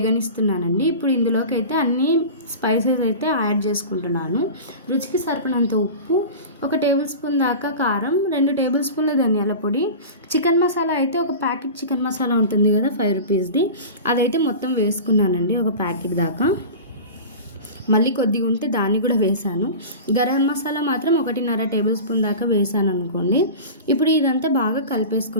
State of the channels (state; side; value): inverted; both; correlation -0.32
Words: ఇప్పుడు ఇందులోకి అయితే అన్ని స్పైసెస్ అయితే యాడ్ చేసుకుంటున్నాను. రుచికి సరిపడినంత ఉప్పు, 1 టేబుల్ స్పూన్ దాకా కారం, 2 టేబుల్ స్పూన్ల ధనియాల పొడి, చికెన్ మసాలా అయితే ఒక ప్యాకెట్ చికెన్ మసాలా ఉంటుంది కదా 5 రూపీస్ది, అదైతే మొత్తం వేసుకున్నానండి, ఒక ప్యాకెట్ దాకా. మళ్ళీ కొద్దిగా ఉంటే దాన్ని కూడా వేసాను. గరం మసాలా మాత్రం 1.5 టేబుల్ స్పూన్ దాకా వేసాను అనుకోండి. ఇప్పుడు ఇదంతా బాగా